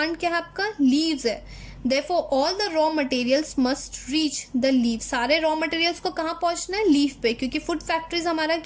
क्या है? आपका लीव्स है। Therefore all the raw materials must reach the leaf. सारे raw materials को कहाँ पहुंचना है? लीफ पे, क्योंकि फूड फैक्ट्रीज हमारा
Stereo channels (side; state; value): both; identical; correlation 1.00